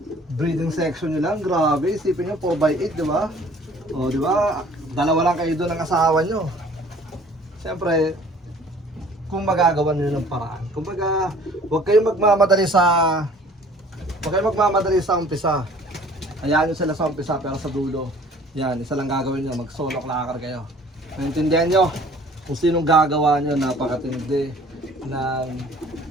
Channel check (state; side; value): normal; both; correlation 0.52